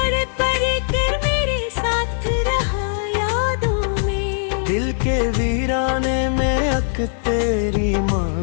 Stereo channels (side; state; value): right; silent; digital silence